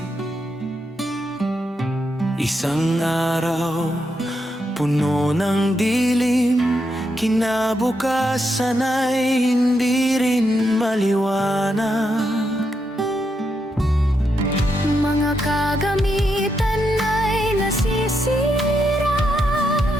Isang araw, puno ng dilim, kinabukasan ay hindi rin maliwanag. Mga kagamitan ay nasisira,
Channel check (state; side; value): normal; both; correlation 0.82